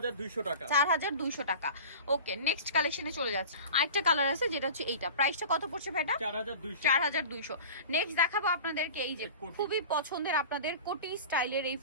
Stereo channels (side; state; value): both; inverted; correlation -0.37